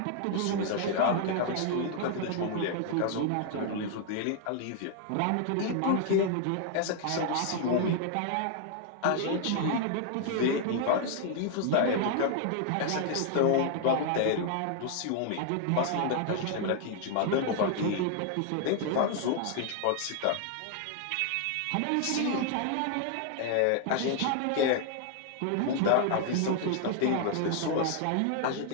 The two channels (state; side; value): different; both; correlation 0.00